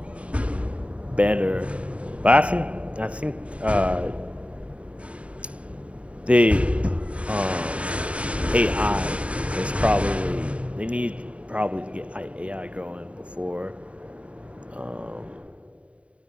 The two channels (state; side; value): late; left; 0.063 ms